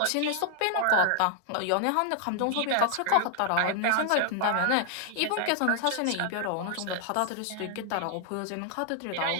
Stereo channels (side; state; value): both; different; correlation 0.00